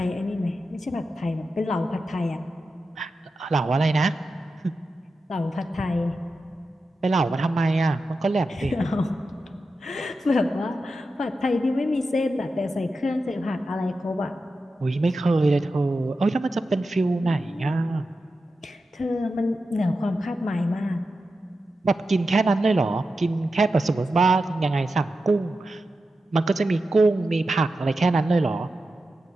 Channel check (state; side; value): normal; both; correlation 0.91